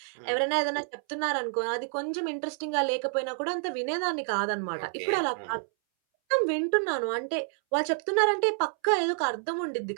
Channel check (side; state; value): left; silent; 59 dB below the other